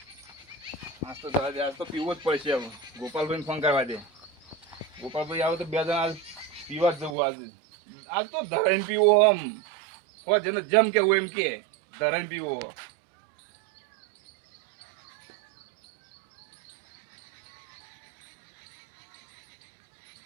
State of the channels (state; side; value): drops out; left; at 7.2 s